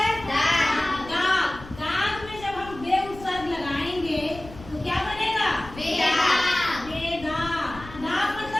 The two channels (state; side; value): noise; left; rumble, 16 dB below the sound